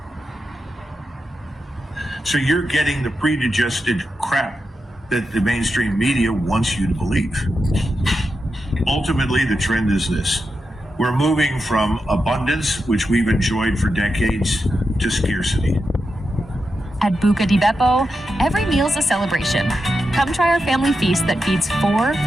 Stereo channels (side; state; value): both; normal; correlation 0.88